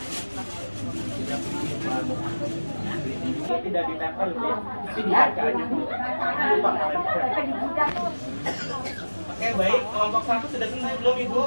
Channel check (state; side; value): inverted; both; correlation -1.00